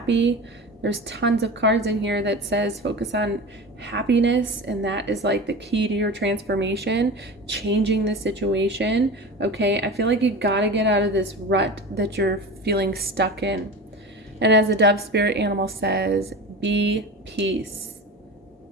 There's tons of cards in here that says focus on happiness, and that is like the key to your transformation, changing the situation. Okay, I feel like you gotta get out of this rut that you're feeling stuck in. And as the dove spirit animal says, be peace.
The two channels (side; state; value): both; normal; correlation 0.31